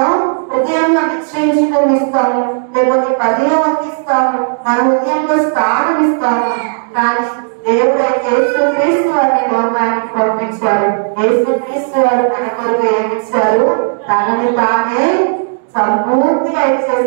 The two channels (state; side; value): silent; left; digital silence